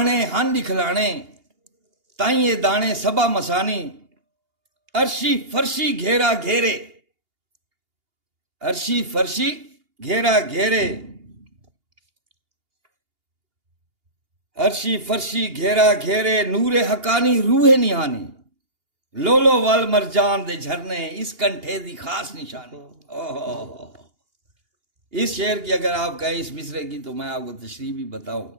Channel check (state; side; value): late; left; 2.8 ms